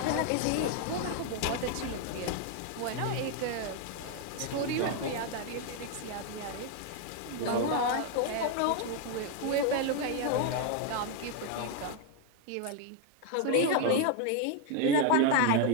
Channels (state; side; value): different; both; correlation 0.01